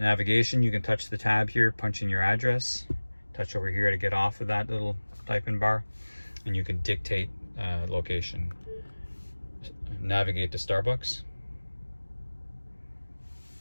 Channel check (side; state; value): both; inverted; correlation -1.00